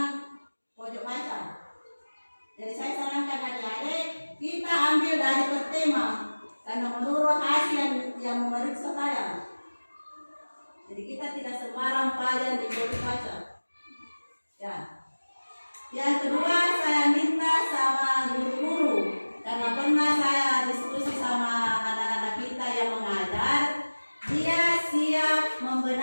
pojok baca. Jadi saya sarankan adik-adik kita ambil dari per tema karena menurut hasil yang memeriksa saya. Jadi kita tidak sembarang pelajaran di pojok baca. Ya. Yang kedua saya minta sama guru-guru karena pernah saya diskusi sama anak-anak kita yang mengajar, dia siap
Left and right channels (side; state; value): both; inverted; correlation -1.00